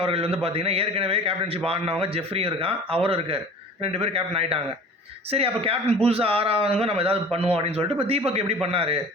அவர்கள் வந்து பார்த்திங்கன்னா ஏற்கனவே கேப்டன்ஷிப் ஆடினவங்க ஜெஃப்ரியும் இருக்கான், அவரும் இருக்கார், 2 பேர் கேப்டன் ஆகிட்டாங்க. சரி, அப்போ கேப்டன் புதுசாக ஆறாவதுங்க நம்ம ஏதாவது பண்ணுவோம் அப்படின்னு சொல்லிட்டு இப்போ தீபக் எப்படி பண்ணார்?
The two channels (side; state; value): both; normal; correlation 0.42